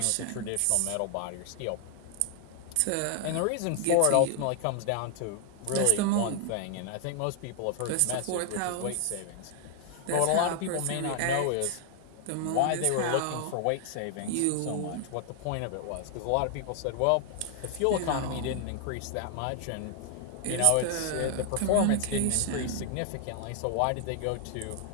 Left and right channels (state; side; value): different; both; correlation 0.00